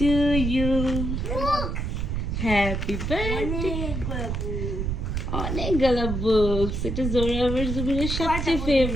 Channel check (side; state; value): right; noise; rumble, 2 dB below the sound